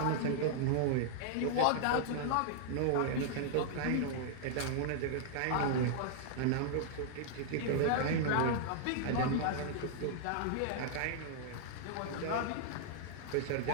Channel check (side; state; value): both; different; correlation -0.01